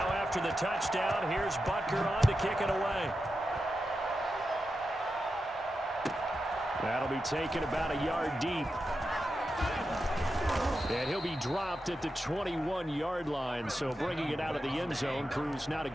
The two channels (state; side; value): normal; both; correlation 0.89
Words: after the touchdown, here's Butker on to kick it away. That'll be taken about a yard deep. And he'll be dropped at the 21-yard line, so bringing it out of the end zone proves not a